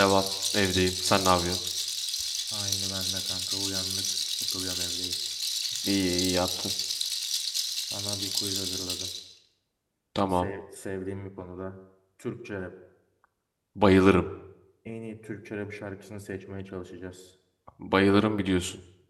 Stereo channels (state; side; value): identical; both; correlation 1.00